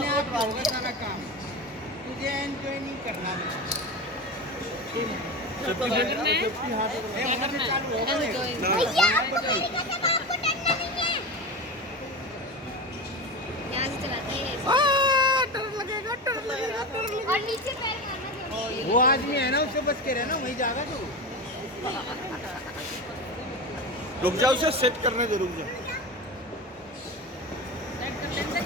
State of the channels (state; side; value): normal; both; correlation 0.24